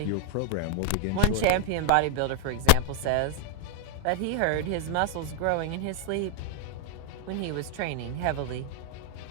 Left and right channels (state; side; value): different; both; correlation 0.00